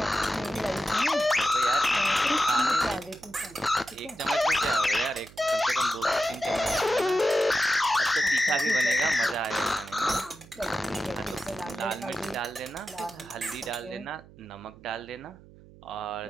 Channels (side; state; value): right; noise; hum, 22 dB below the sound